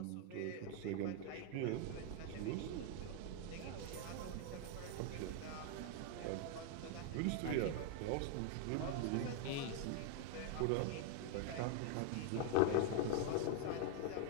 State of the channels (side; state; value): both; different; correlation 0.00